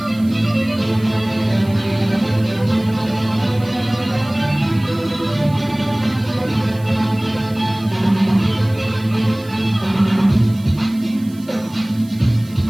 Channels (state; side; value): noise; right; hiss, 24 dB below the sound